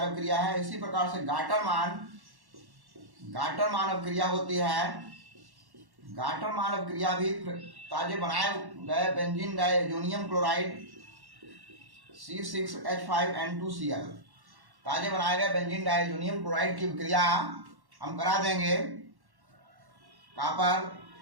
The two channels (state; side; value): late; left; 1.1 ms